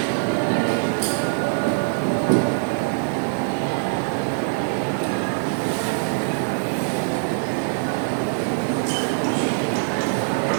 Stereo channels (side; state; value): left; silent; digital silence